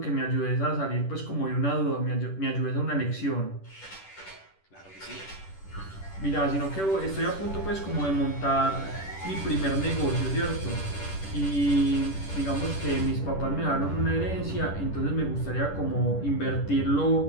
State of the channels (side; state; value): right; late; 10 ms